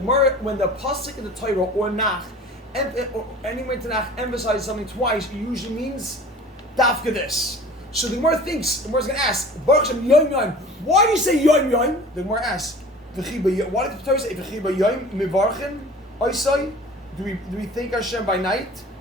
in the Torah or Nach, or anyway to Nach emphasizes something twice, it usually means dafka this. So the Gemara thinks. The Gemara's going to ask Baruch Hashem Yoim Yoim. Why do you say Yoim Yoim? The Gemara asks. Why did the Torah say V'chi Yoim Mivarchen? Oisai? Do we thank Hashem by night?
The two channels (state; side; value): normal; both; correlation 0.43